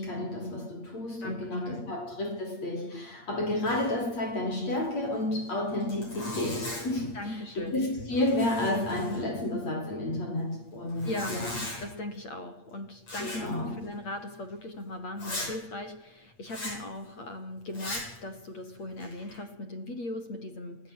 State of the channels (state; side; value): late; right; 8.6 ms